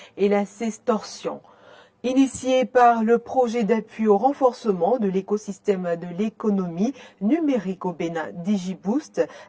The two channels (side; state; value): both; identical; correlation 1.00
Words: et la sextorsion. Initié par le projet d'appui au renforcement de l'écosystème de l'économie numérique au Bénin, DigiBoost,